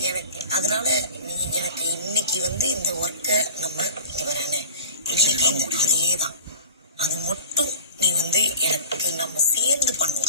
எனக்கு அதனால நீ எனக்கு இன்னைக்கு வந்து இந்த ஒர்க்கை நம்ம இங்க வரேன்னு இன்னைக்கு அதேதான். அது மட்டும் நீ வந்து எனக்கு நம்ம சேர்ந்து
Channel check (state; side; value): inverted; both; correlation -0.40